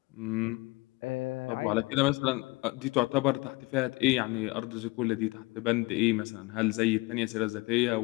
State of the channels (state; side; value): quieter; right; 24.3 dB